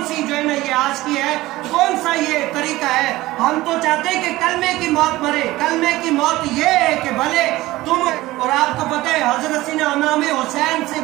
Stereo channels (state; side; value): quieter; left; 18.0 dB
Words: सी जो है ना ये आज की है, कौन सा ये तरीका है। हम तो चाहते हैं कि कलमे की मौत मरे। कलमे की मौत ये है कि भले तुम, और आपको पता है हजरत सीना इमाम हुसैन से